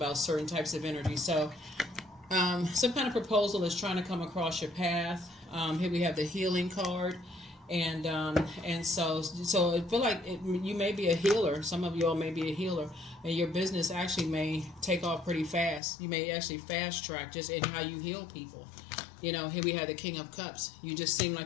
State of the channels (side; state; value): right; drops out; at 15.8 s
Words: certain types of energy. So some kind of proposal is trying to come across your path. Here we have the healing card. And so I feel like you may be a healer. Some of you all may be a healer, and your business actually may take off pretty fast. You may actually fast track just in how you heal people. Here we have the King of Cups. You just seem